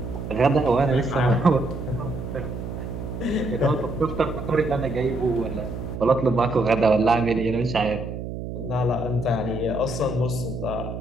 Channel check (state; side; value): noise; right; hum, 7 dB below the sound